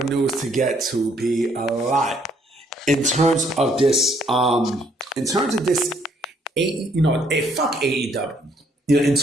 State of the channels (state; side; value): normal; both; correlation 0.67